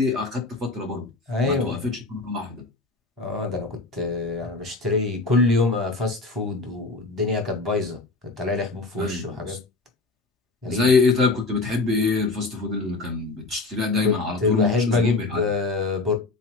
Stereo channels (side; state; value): right; quieter; 3.4 dB